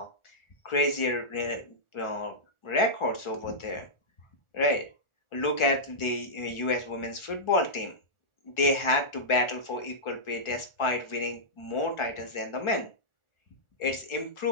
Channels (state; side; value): late; right; 1.4 ms